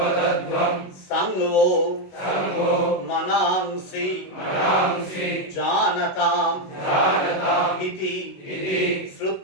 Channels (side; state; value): right; late; 21 ms